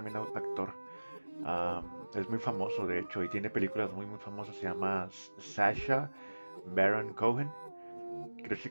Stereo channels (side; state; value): both; inverted; correlation -1.00